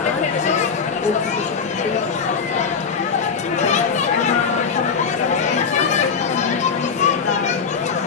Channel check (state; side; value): quieter; right; 5.8 dB